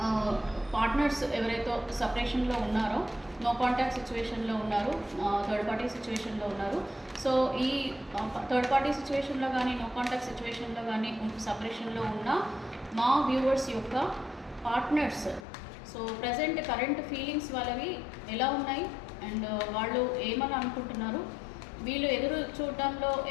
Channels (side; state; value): right; drops out; at 15.5 s